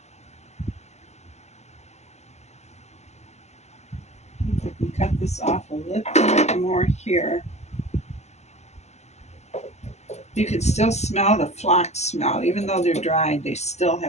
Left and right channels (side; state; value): right; late; 0.33 ms